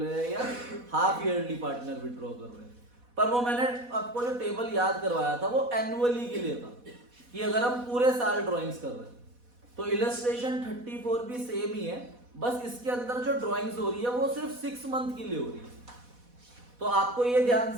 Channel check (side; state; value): left; late; 4.1 ms